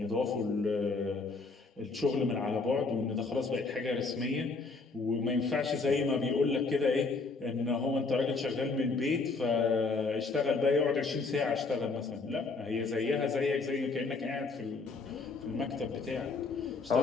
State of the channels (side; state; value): right; quieter; 4.0 dB